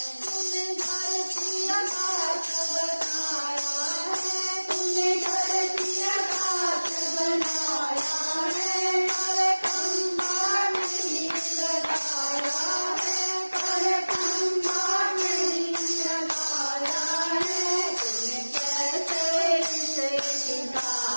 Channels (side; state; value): both; inverted; correlation -1.00